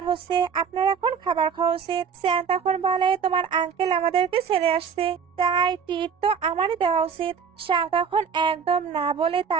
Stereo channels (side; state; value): left; quieter; 6.5 dB